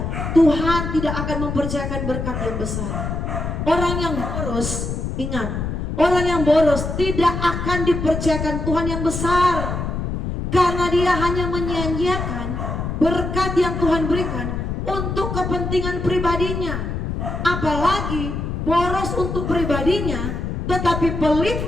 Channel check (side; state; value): left; noise; rumble, 3 dB below the sound